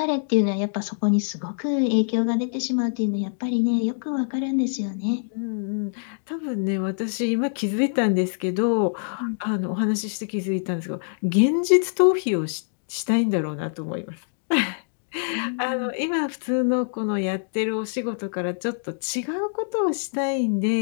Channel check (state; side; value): silent; right; digital silence